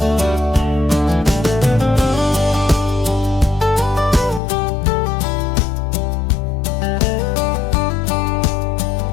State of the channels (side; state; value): right; drops out; at 4.4 s